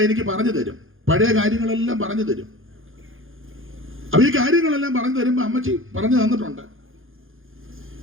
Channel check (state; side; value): late; left; 0.59 ms